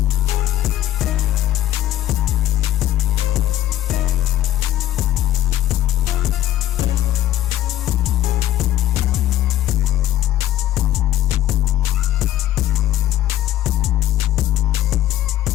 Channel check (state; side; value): quieter; right; 13.4 dB